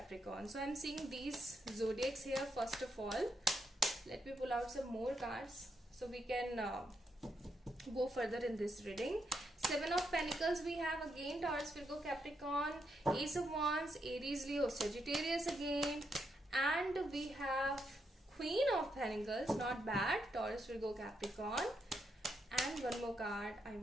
So I'm seeing these zodiacs here first of all. Let me pull out some more cards so we can go further in this reading. Seven of Pentacles we have again, Taurus, Virgo, Capricorn. Ace of Wands, Aries, Leo, Sagittarius again. And we have Queen of Pentacles, not bad, Taurus, Virgo, Capricorn. And one more card I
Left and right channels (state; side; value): normal; both; correlation 0.80